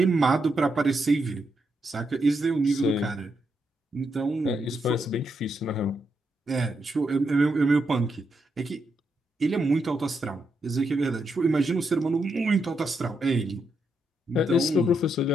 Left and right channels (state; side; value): normal; both; correlation 0.81